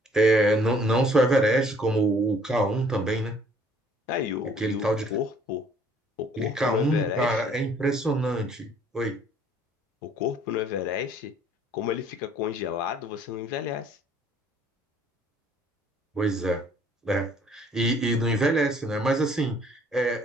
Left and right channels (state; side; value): normal; both; correlation 0.60